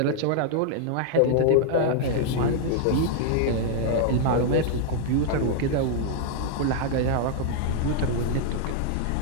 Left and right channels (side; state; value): both; different; correlation -0.01